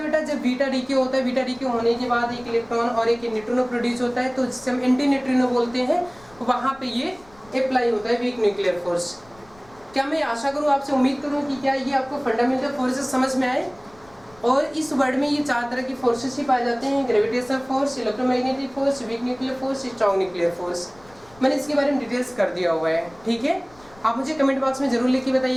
बेटा? जब बीटा डीके होता है। बीटा डीके होने के बाद एक इलेक्ट्रॉन और एक न्यूट्रिनो प्रोड्यूस होता है, तो जिसे हम एंटी न्यूट्रिनो बोलते हैं, वहाँ पे ये अप्लाई होता है वीक न्यूक्लियर फोर्स। क्या मैं आशा करूँ, आपसे उम्मीद करूँ कि क्या ये आपको फंडामेंटल फोर्सेस समझ में आए। और इस वर्ड में ये 4 तरह की फोर्सेस ही पाए जाते हैं: gravitational force, electromagnetic force, week nuclear force, strong nuclear force. मैंने इसके बारे में डिटेल्स कर दिया हुआ है। ठीक है, आप मुझे कमेंट बॉक्स में जरूर लिख के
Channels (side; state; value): left; noise; rumble, 26 dB below the sound